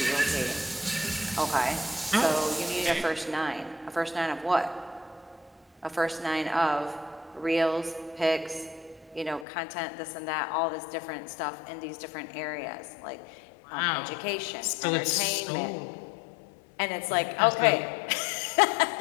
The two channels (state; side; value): drops out; right; at 9.5 s